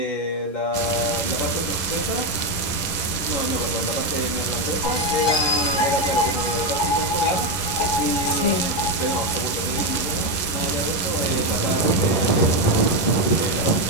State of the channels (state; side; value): late; right; 11 ms